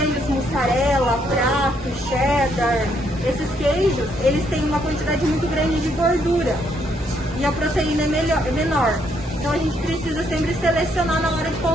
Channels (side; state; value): both; normal; correlation 0.72